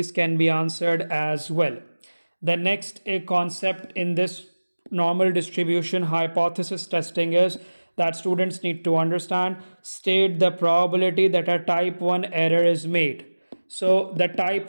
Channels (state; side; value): inverted; both; correlation -1.00